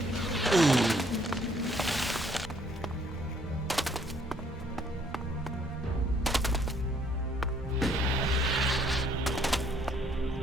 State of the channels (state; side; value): normal; both; correlation 0.64